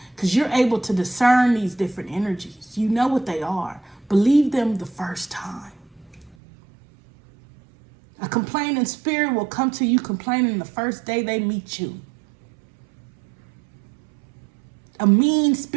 Because you're able to discern these different energies. You know what they are. Believe them the first time. A complaining spirit will come to you complaining the first day they meet you. A mean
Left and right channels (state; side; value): drops out; left; at 6.4 s